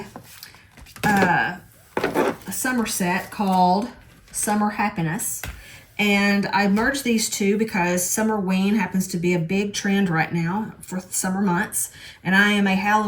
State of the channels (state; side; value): identical; both; correlation 1.00